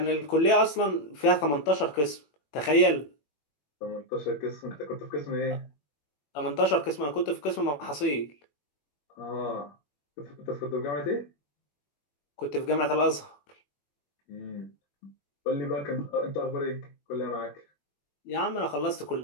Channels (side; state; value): right; late; 21 ms